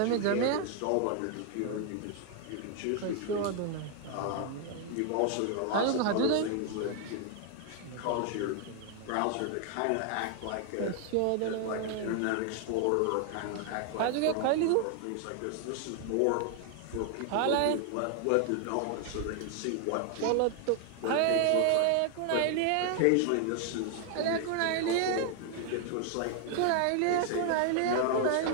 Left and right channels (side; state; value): both; different; correlation 0.00